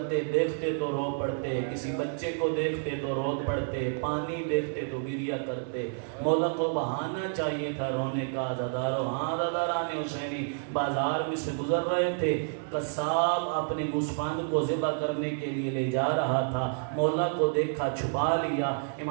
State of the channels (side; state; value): left; silent; 57 dB below the other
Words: دیکھتے تو رو پڑتے، کسی بچے کو دیکھتے تو رو پڑتے، پانی دیکھتے تو گریہ کرتے۔ مولا کو بہانہ چاہیے تھا رونے کا۔ زدارو، ہاں زداران حسینی، بازار میں سے گزر رہے تھے، قصاب اپنے گوسفند کو ذبح کرنے کے لیے لے جا رہا تھا، مولا کو دیکھا، چھپا لیا۔